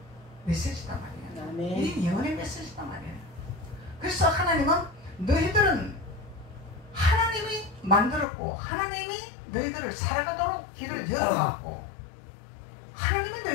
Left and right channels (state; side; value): drops out; right; at 8.2 s